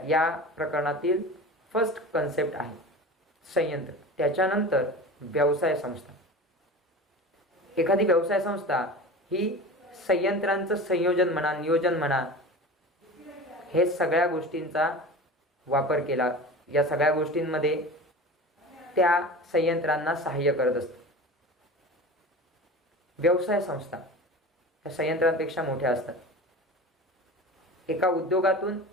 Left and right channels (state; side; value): normal; both; correlation 0.34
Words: या प्रकरणातील फर्स्ट कन्सेप्ट आहे संयंत्र. त्याच्यानंतर व्यवसाय संस्था. एखादी व्यवसाय संस्था ही संयंत्रांचं संयोजन म्हणा, नियोजन म्हणा, हे सगळ्या गोष्टींचा वापर केला, या सगळ्या गोष्टींमध्ये त्या संयंत्रांना सहाय्य करत असते. व्यवसाय संस्था या संयंत्रांपेक्षा मोठ्या असतात. एका उद्योगातून